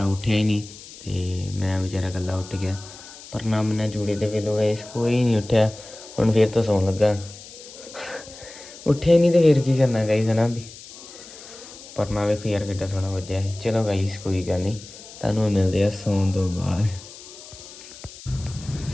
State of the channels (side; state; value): left; noise; hiss, 17 dB below the sound